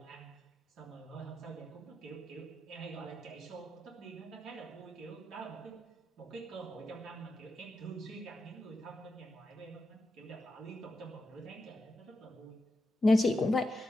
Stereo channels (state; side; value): normal; both; correlation 0.87